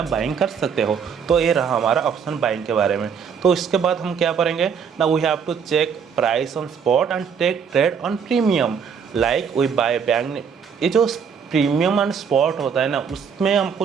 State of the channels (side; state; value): left; quieter; 6.8 dB